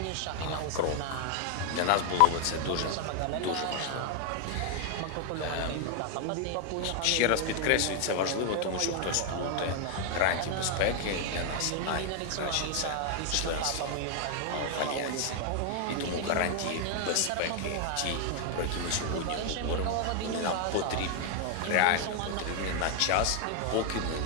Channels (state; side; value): different; both; correlation 0.00